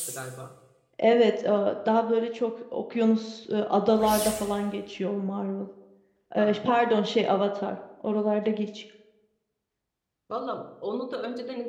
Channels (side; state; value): both; identical; correlation 1.00